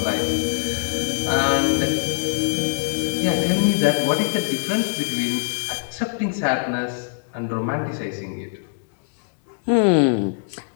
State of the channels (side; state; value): right; silent; digital silence